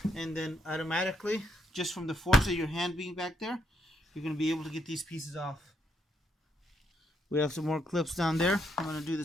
and then automatically, just from the force of your hand being back there, you're going to be able to get these pieces off. We have some more clips down there. I'm going to do the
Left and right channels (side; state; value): both; normal; correlation 0.76